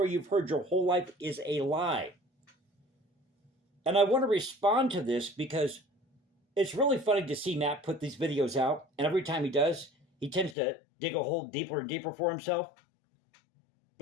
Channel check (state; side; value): drops out; right; at 10.6 s